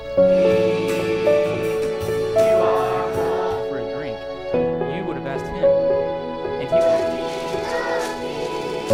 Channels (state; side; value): identical; both; correlation 1.00